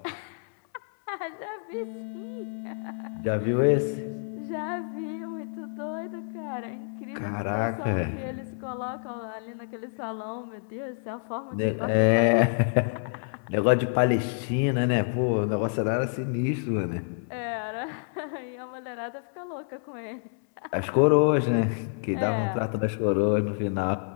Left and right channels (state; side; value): silent; right; 59 dB below the other